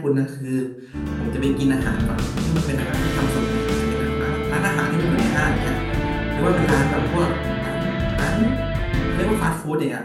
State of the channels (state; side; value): identical; both; correlation 1.00